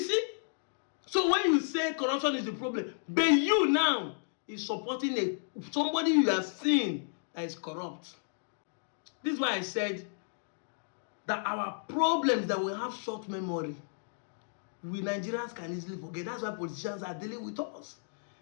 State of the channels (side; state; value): right; silent; digital silence